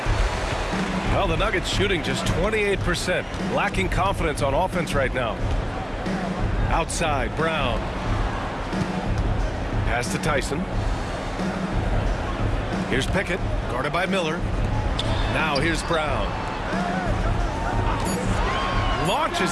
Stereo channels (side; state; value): both; identical; correlation 1.00